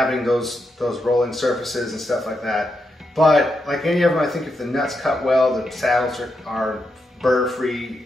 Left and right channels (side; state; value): both; normal; correlation 0.84